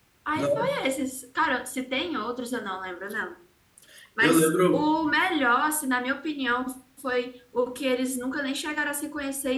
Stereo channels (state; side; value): identical; both; correlation 1.00